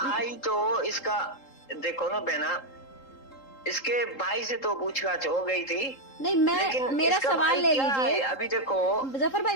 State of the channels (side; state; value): right; late; 3.8 ms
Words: तो इसका देखो ना बहना, इसके भाई से तो पूछताछ हो गई थी। नहीं, मेरा सवाल ले लीजिए। अभी देखो जफर भाई,